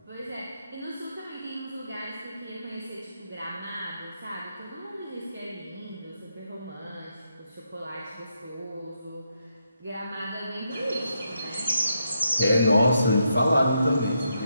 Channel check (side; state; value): both; inverted; correlation -0.80